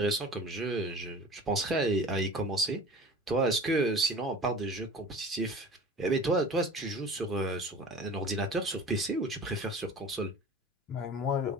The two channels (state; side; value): normal; both; correlation 0.40